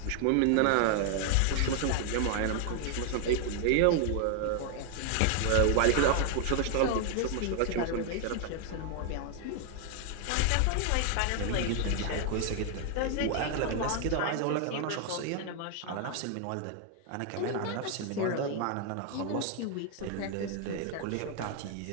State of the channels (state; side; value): different; both; correlation 0.00